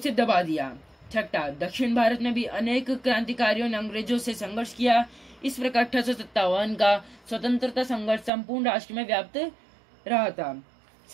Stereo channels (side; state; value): left; drops out; at 8.3 s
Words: दबा दिया। छठा, दक्षिण भारत में भी अनेक क्रांतिकारियों ने अंग्रेजों से संघर्ष किया। इस प्रकार 1857 का स्वतंत्रता संघर्ष संपूर्ण राष्ट्र में व्याप्त रहा था।